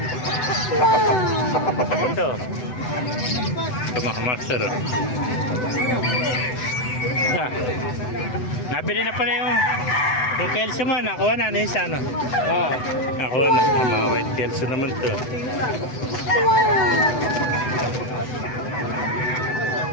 Ito. Ito mga master o. Nabili na pala yung Kelso mo. Nakuha na isa ano? Oo. Nakuha na. Mga white Kelso naman ito.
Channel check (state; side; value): late; right; 8.0 ms